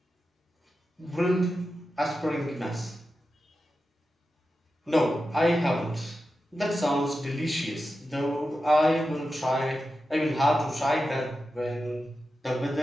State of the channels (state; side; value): normal; both; correlation 0.91